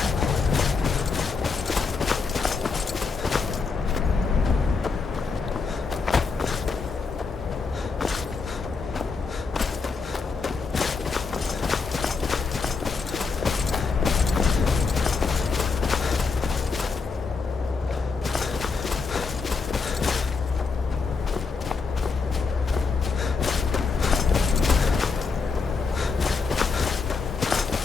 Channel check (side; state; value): right; quieter; 4.7 dB